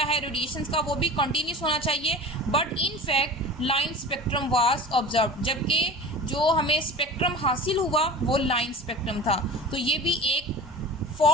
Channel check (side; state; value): both; normal; correlation 0.37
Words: है रेडिएशंस का वो भी कंटिन्यूस होना चाहिए. But in fact line spectrum was observe. जबकि जो हमें स्पेक्ट्रम हासिल हुआ वो लाइन स्पेक्ट्रम था. तो ये भी एक